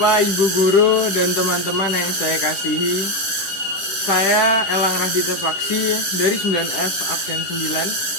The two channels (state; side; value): late; right; 10 ms